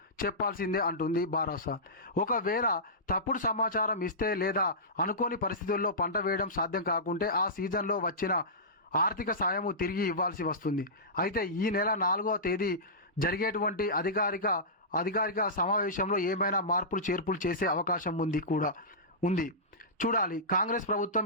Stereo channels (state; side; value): normal; both; correlation -0.17